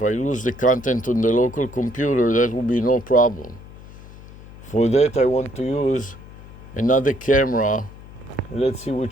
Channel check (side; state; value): left; noise; hum, 18 dB below the sound